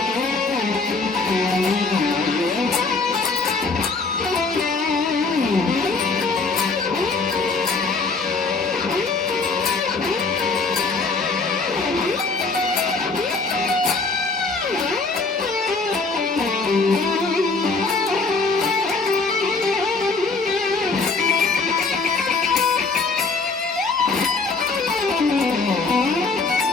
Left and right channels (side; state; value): right; quieter; 4.1 dB